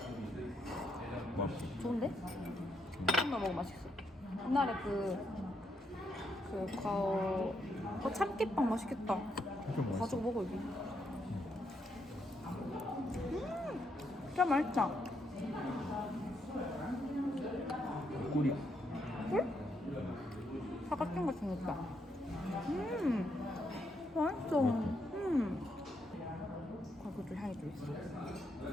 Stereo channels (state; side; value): normal; both; correlation 0.77